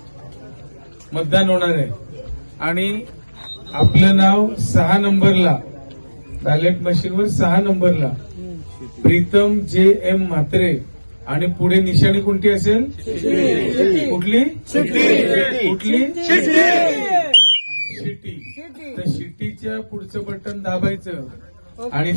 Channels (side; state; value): both; inverted; correlation -1.00